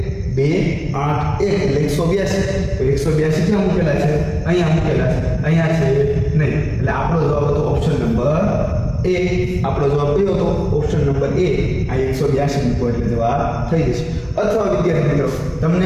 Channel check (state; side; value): identical; both; correlation 1.00